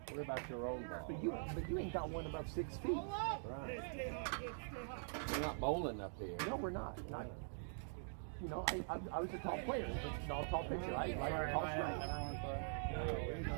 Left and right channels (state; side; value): silent; left; digital silence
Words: What about your own ball? But you ain't got one above 6 feet. Right. We're not bowling up here. No, we're not. You know, I was a tall player, but not a tall pitcher. I like a tall strike.